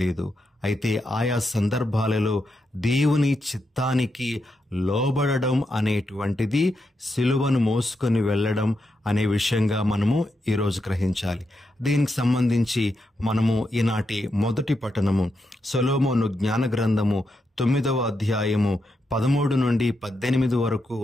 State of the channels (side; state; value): both; normal; correlation 0.84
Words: అయితే ఆయా సందర్భాలలో దేవుని చిత్తానికి లోబడడం అనేటువంటిది సిలువను మోసుకొని వెళ్ళడం అనే విషయంగా మనము ఈరోజు గ్రహించాలి. దీనికి సంబంధించి మనము ఈనాటి మొదటి పఠనము సొలొమోను జ్ఞాన గ్రంథము 9వ అధ్యాయము 13 నుండి 18 వరకు